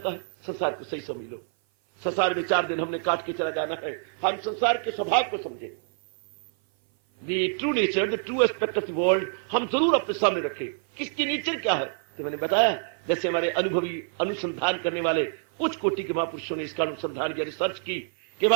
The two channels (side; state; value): left; silent; 56 dB below the other